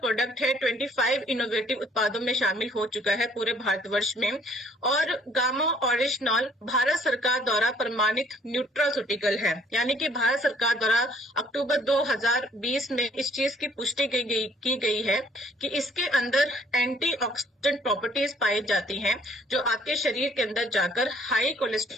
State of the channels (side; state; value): both; normal; correlation 0.60